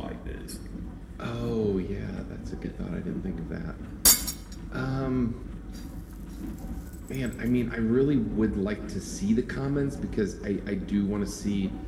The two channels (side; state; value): both; identical; correlation 1.00